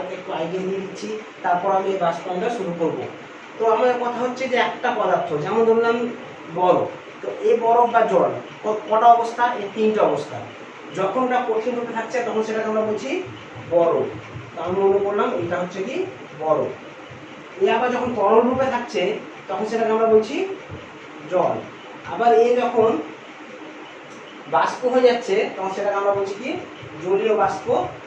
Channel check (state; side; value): identical; both; correlation 1.00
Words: একটু আইডিয়া দিয়ে দিচ্ছি, তারপর আমি এই বাষ্পায়নটা শুরু করব। তো আমার কথা হচ্ছে যে একটা পদার্থ, যেমন ধরলাম বরফ। তো এই বরফ বা জল কটা অবস্থা? এই 3টে অবস্থা। যখন ওটা কঠিন রূপে থাকছে তখন সেটাকে আমরা বলছি বরফ। তো আমি মনে করলাম এটা হচ্ছে কি বরফ। এ আবার যখন তরল রূপে থাকছে তখন সেটাকে আমরা বলছি জল। আবার এ যখন বাষ্প হয়ে যাচ্ছে তখন সেটাকে আমরা বলছি কি জলীয় বাষ্প